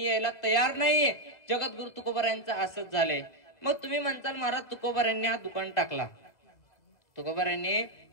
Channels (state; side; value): late; right; 2.2 ms